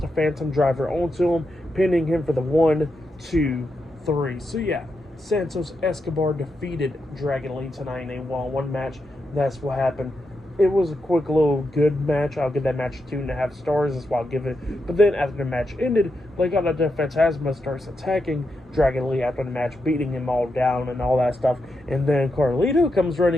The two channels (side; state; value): both; normal; correlation 0.85